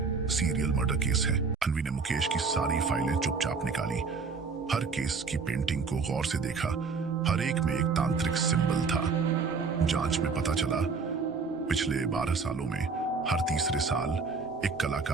सीरियल मर्डर केस है। अनवी ने मुकेश की सारी फाइलें चुपचाप निकाली, हर केस की पेंटिंग को गौर से देखा। हर एक में एक तांत्रिक सिंबल था। जांच में पता चला पिछले 12 सालों में हर तीसरे साल एक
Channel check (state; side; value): quieter; left; 4.8 dB